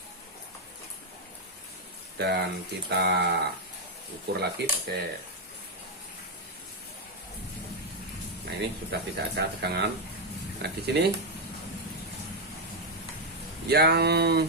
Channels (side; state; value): both; normal; correlation 0.02